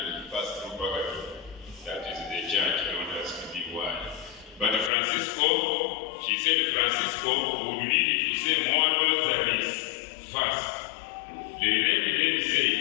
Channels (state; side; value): drops out; right; at 4.9 s